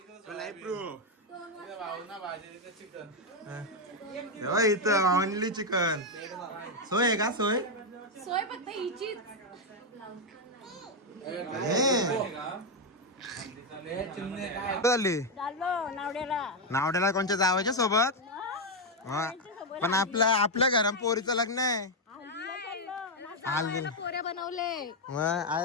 इथं ओनली चिकन. सोय आहे का? सोय सोय फक्त हिचीच. झाली नावड्याला. नावड्याला कोणच्या जावायच्या सोबत. हा. पण आपल्या घरात पोरीचं लग्न आहे. पोऱ्या बनवले.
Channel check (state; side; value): normal; both; correlation 0.03